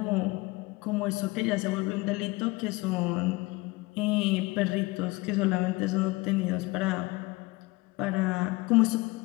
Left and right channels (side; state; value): right; quieter; 23.0 dB